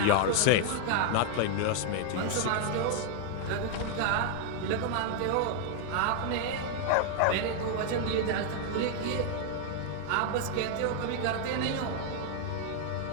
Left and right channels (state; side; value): different; both; correlation 0.00